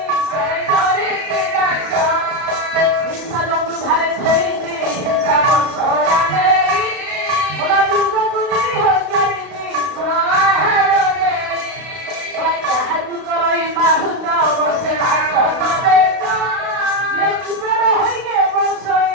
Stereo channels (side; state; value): left; late; 32 ms